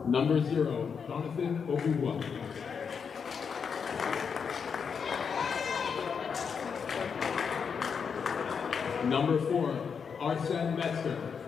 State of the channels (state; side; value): quieter; right; 6.3 dB